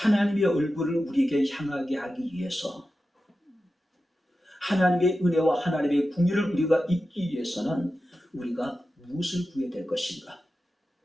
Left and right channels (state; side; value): normal; both; correlation 0.92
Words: 얼굴을 우리에게 향하게 하기 위해서, 하나님의 은혜와 하나님의 궁유를 우리가 입기 위해서는 우리가 무엇을 구해야 될 것인가?